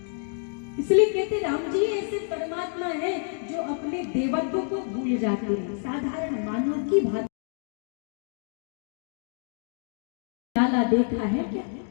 इसलिए कहते राम जी ऐसे परमात्मा है जो अपने देवत्व को भूल जाते हैं, साधारण मानव की भांति। लाला देखा है क्या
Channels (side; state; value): right; silent; 59 dB below the other